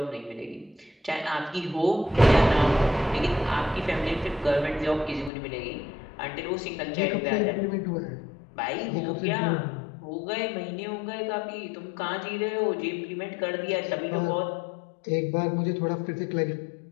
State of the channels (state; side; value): drops out; right; at 5.3 s